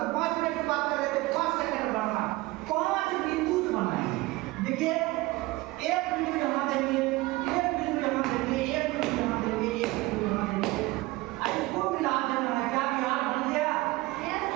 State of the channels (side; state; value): left; quieter; 20.6 dB